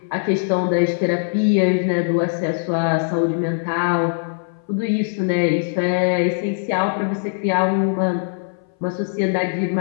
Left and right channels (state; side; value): silent; right; 60 dB below the other